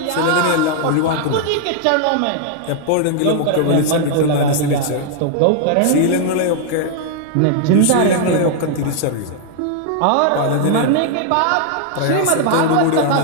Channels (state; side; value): different; both; correlation 0.00